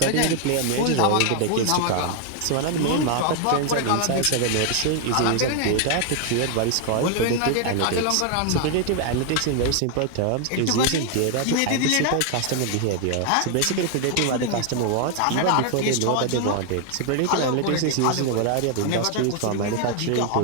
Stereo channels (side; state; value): both; different; correlation 0.00